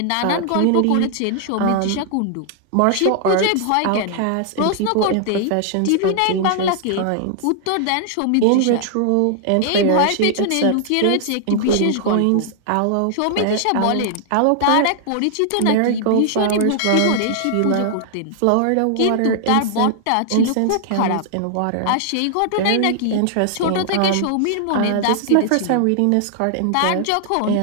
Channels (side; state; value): both; different; correlation 0.00